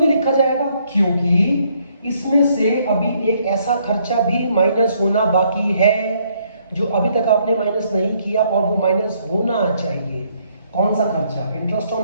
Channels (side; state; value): both; inverted; correlation -0.69